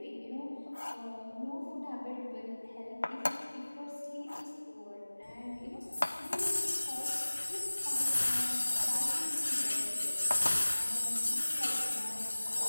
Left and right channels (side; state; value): both; inverted; correlation -1.00